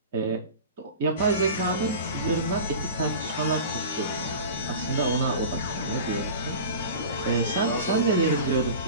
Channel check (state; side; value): inverted; both; correlation -0.35